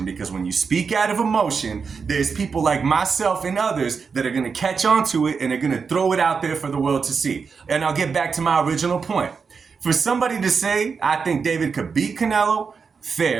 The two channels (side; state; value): left; quieter; 5.5 dB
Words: because when you speak out of emotion, there's people like myself and others that are going to catch on to it and are going to throw it out there for the world to see. And I'll get back to my original point. For somebody to say, I think David could beat Canelo,